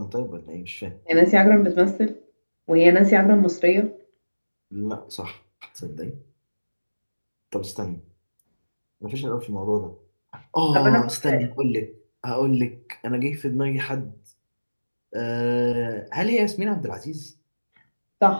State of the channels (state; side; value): inverted; both; correlation -1.00